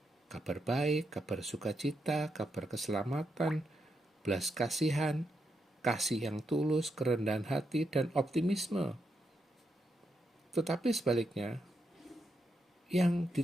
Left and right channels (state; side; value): normal; both; correlation 0.82